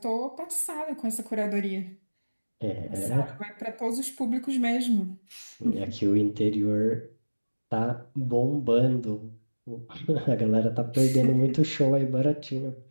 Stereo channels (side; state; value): both; inverted; correlation -1.00